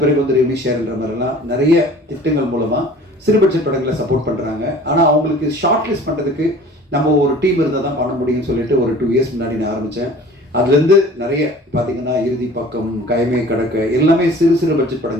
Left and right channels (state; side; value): normal; both; correlation 0.46